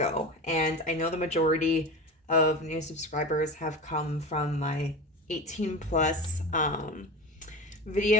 And I know the majority of new subscribers have come from my 18 plus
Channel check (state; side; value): normal; both; correlation 0.27